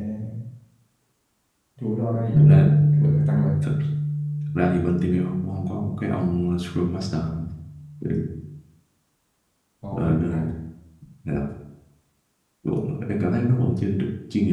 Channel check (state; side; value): identical; both; correlation 1.00